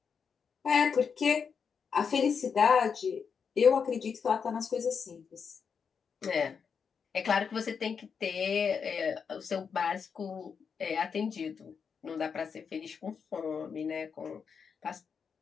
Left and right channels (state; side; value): quieter; right; 6.3 dB